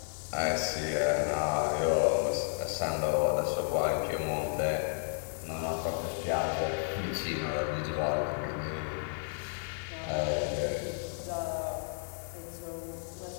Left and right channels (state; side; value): silent; right; digital silence